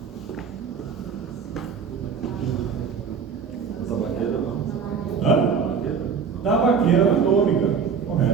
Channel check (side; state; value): left; quieter; 6.2 dB